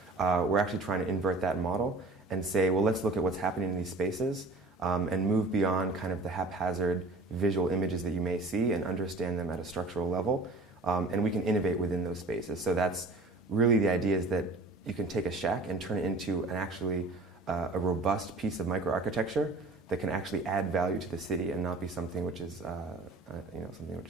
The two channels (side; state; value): left; quieter; 3.2 dB